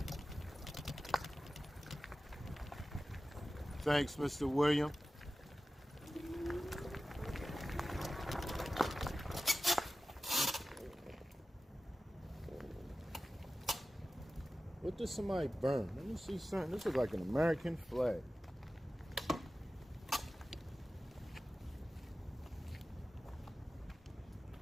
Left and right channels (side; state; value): both; normal; correlation 0.95